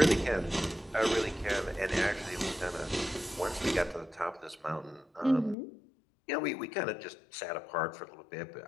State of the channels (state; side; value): drops out; right; at 5.6 s